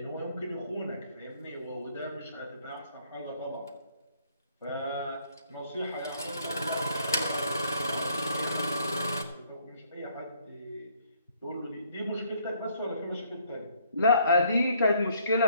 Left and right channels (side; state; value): both; inverted; correlation -0.65